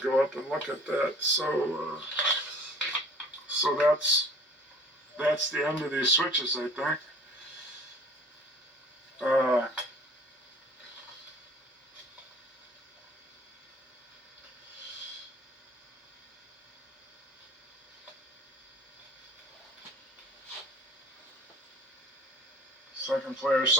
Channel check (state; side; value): normal; both; correlation 0.48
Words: go up and look at that. So that's the end of these switches, I think. Second player